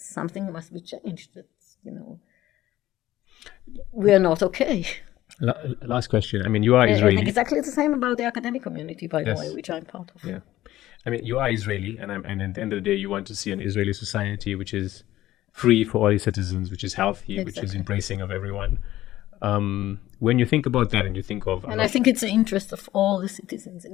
must be changed, that, we are not okay. Last question. I mean, you are Israeli. And exactly the same about the academic community, by the way, which I'm part of. Yeah. I mean, you are Israeli, and at the end of the day, you want to see an Israeli society which is free for all its citizens, which is healthy, which is embracing of everyone. When you think about that, and you think of, and I think it's the interest of all the citizens in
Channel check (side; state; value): right; quieter; 14.9 dB